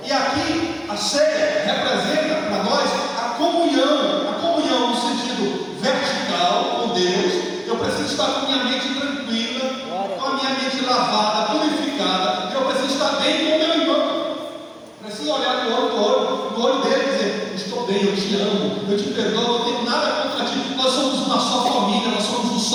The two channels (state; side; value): identical; both; correlation 1.00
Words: E aqui a ceia representa para nós a comunhão no sentido vertical com Deus. Eu preciso estar com minha mente tranquila, com a minha mente lavada, purificada. Eu preciso estar bem com o meu irmão. Preciso olhar eu te perdoo, não tenho nada contra ti. Nós somos uma só família, nós somos um